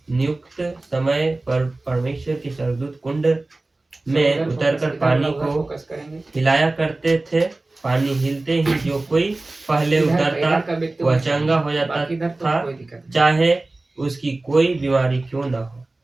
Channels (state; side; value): quieter; left; 3.0 dB